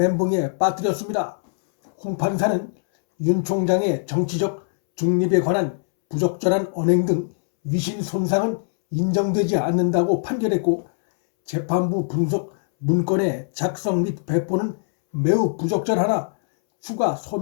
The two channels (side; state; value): right; silent; 64 dB below the other